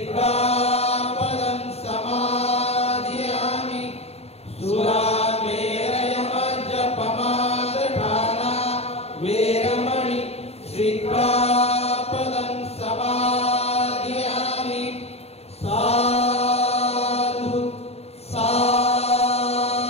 समादयामि सुरामेरयमज्जपमादठाना वेरमणि सिक्खापदं समादयामि साधु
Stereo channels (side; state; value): right; late; 0.30 ms